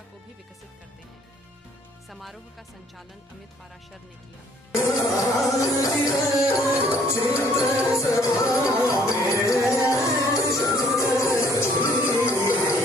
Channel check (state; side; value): normal; both; correlation 0.61